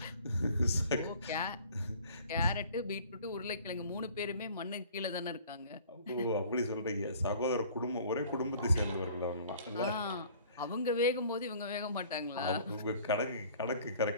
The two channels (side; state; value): both; inverted; correlation -0.51